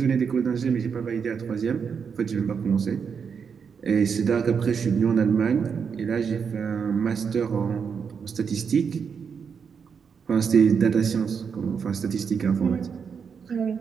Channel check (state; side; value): quieter; left; 6.4 dB